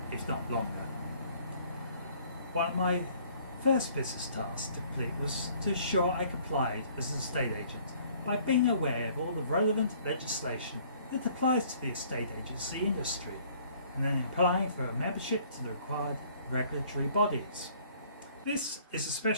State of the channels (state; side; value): inverted; both; correlation -0.58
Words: if not longer. One of my first business tasks to complete was to ensure I complied as an estate agent by being aware of all the relevant legislation that applies to the estate agency industry, and then applying for a membership to the required regulatory bodies. This is